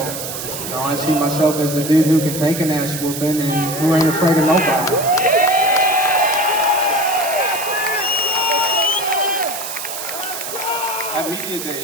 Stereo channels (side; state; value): right; noise; hiss, 7 dB below the sound